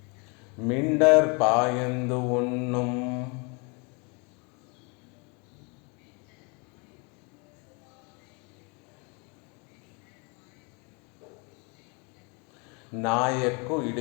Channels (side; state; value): right; quieter; 32.3 dB